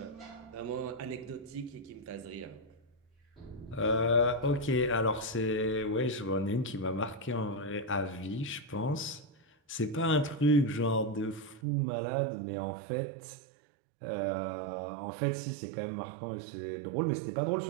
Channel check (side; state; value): left; drops out; at 11.6 s